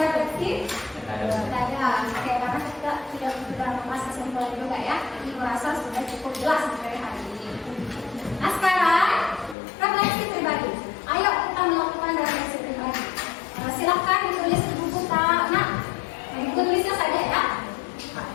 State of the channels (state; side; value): drops out; right; at 9.6 s